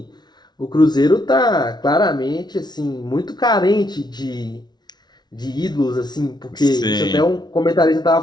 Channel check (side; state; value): right; late; 0.20 ms